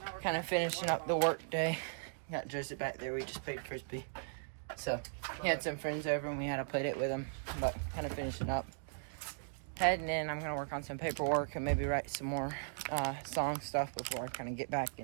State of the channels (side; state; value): left; silent; digital silence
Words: kind of finishing up the work day. Got Joseph back there. We just played Frisbee. So he had some friends over and we had to play it with them. But kind of finishing up. Heading in, I'm going to work on some paperwork and maybe write some more song stuff before I kind of get back